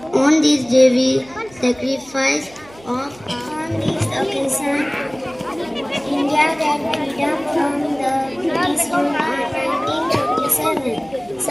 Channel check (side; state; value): right; noise; hum, 24 dB below the sound